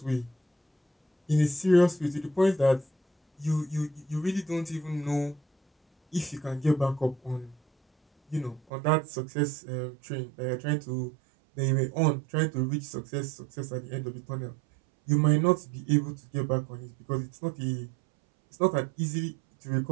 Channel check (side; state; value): left; drops out; at 8.6 s